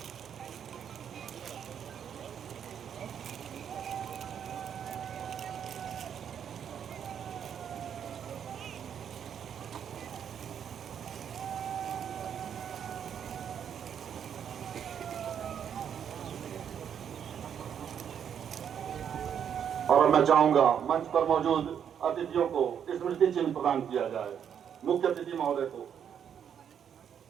और मैं चाहूंगा मंच पर मौजूद अतिथियों को स्मृति चिन्ह प्रदान किया जाए। मुख्य अतिथि महोदय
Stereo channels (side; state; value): left; quieter; 8.4 dB